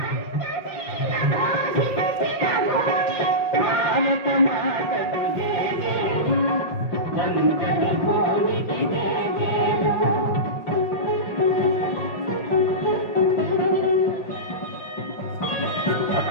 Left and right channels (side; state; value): right; late; 5.7 ms